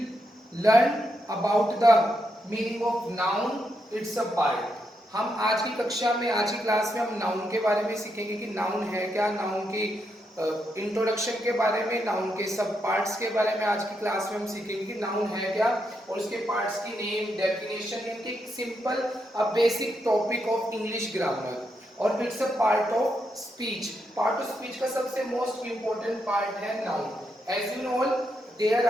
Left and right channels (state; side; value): normal; both; correlation 0.81